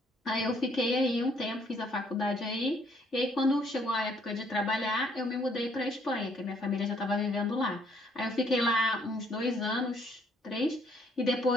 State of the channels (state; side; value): normal; both; correlation 0.66